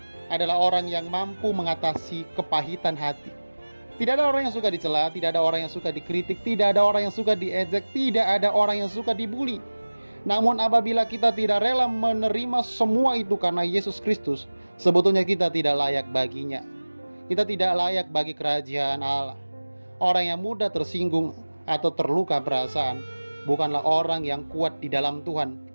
adalah orang yang mampu mengatasi kepahitan hati. Tidak ada orang yang suka dicela, tidak ada orang yang suka dikritik, tidak ada orang yang suka diejek, tidak ada orang yang suka dibully. Namun apabila kita tidak rela menerima semua itu karena Yesus Kristus, sebetulnya kita tidak layak baginya. Kita tidak layak bagi kerajaan Allah. Orang yang mudah tersinggung atau terluka perasaan bukanlah orang yang kuat di dalam Tuhan.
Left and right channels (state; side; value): inverted; both; correlation -1.00